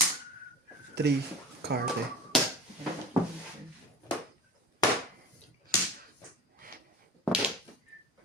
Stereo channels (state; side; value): normal; both; correlation 0.34